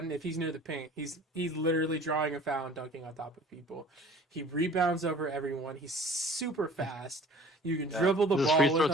if he's near the paint. He's literally drawing a foul and dunking on top of people. He rebounds over everyone. He's super fast. You can dribble the ball. Is his free with throw him.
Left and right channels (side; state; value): both; normal; correlation 0.48